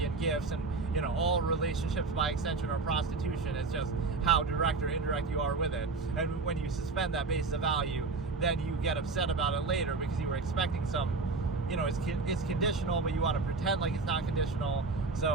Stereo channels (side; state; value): left; quieter; 4.0 dB